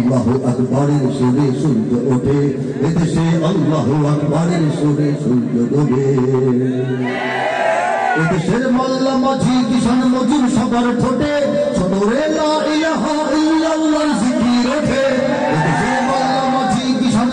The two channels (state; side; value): identical; both; correlation 1.00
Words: আকবরের সুরে সূর্য ওঠে, এদেশে আল্লাহু আকবরের সুরে সূর্য ডোবে। এদেশের মোল্লা মাঝি কিষান মজুর সবার ঠোঁটে সদরে লা ইলাহা ইল্লাল্লাহর জিকির ওঠে। এদেশের মোল্লা মাঝি কিষান